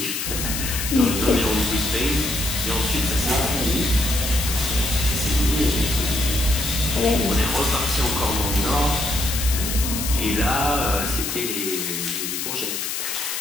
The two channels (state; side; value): noise; left; hiss, 3 dB below the sound